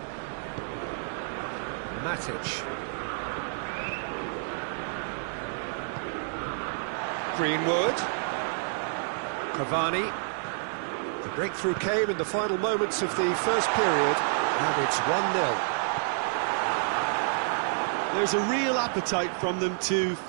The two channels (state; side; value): silent; left; digital silence